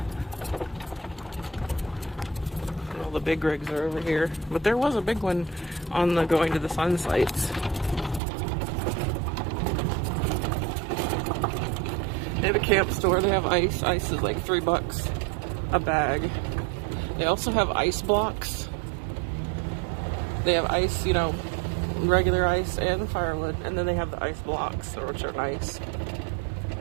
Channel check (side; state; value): left; drops out; at 8.2 s